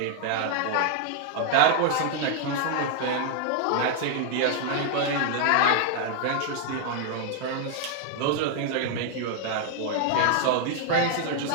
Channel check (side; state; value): both; different; correlation 0.00